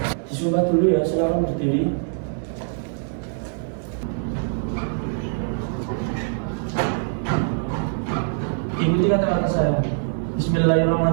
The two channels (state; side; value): silent; left; digital silence